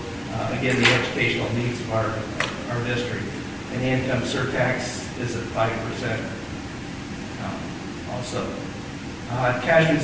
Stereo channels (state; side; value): identical; both; correlation 1.00